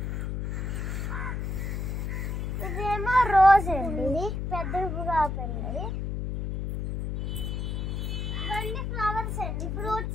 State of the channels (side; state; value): left; noise; hum, 2 dB below the sound